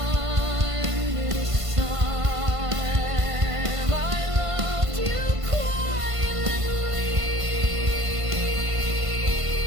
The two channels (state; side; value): late; left; 1.5 ms